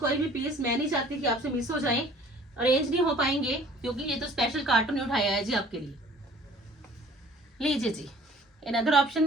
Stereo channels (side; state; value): both; normal; correlation 0.52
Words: भी पीस मैं नहीं चाहती कि आपसे मिस हो जाए, अरेंज नहीं हो पाएंगे, क्योंकि ये तो स्पेशल कार्टून उठाया है जी आपके लिए। लीजिए जी, अनदर ऑप्शन